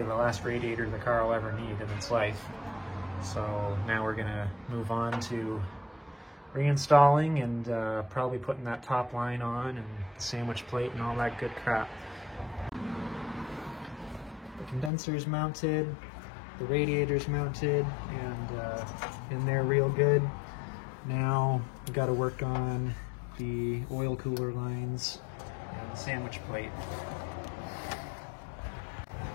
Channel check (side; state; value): right; drops out; at 14.9 s